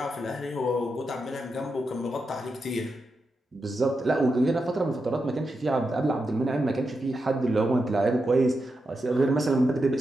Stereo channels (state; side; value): normal; both; correlation 0.87